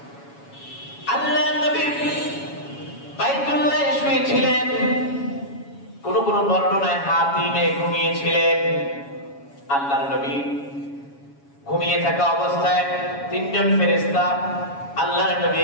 আল্লাহ নবী বাইতুল্লাহে শুয়েছিলেন, কোন কোন বর্ণনায় হাতিমে ঘুমিয়েছিলেন। আল্লাহর নবী ঘুমিয়ে থাকা অবস্থায় তিনজন ফেরেশতা আল্লাহর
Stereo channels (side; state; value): right; late; 7.2 ms